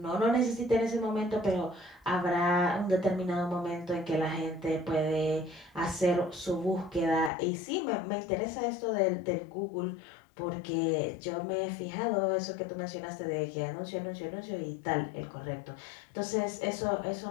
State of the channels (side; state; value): right; drops out; at 7.3 s